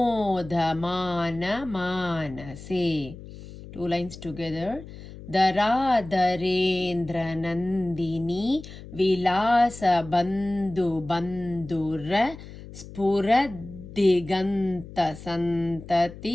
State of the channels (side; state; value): left; noise; hum, 15 dB below the sound